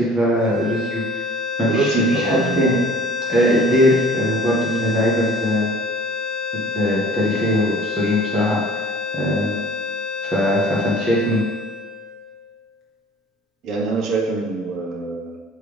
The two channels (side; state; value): both; normal; correlation 0.48